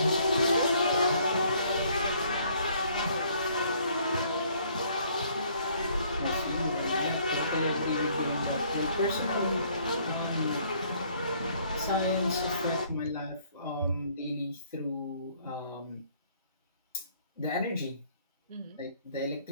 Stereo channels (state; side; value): inverted; both; correlation -0.63